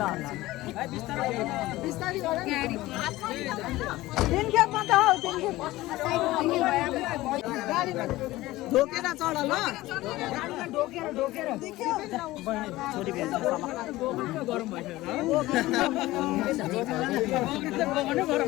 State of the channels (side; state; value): right; quieter; 17.8 dB